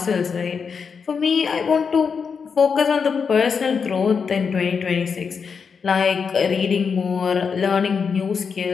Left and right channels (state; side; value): quieter; right; 5.9 dB